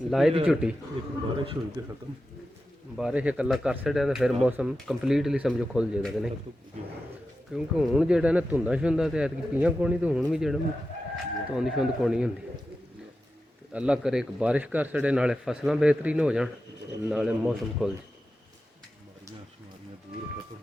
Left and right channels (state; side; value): normal; both; correlation 0.91